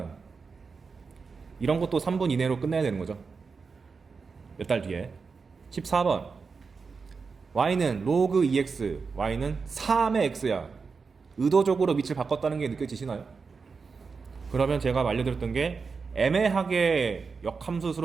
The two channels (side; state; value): left; quieter; 5.0 dB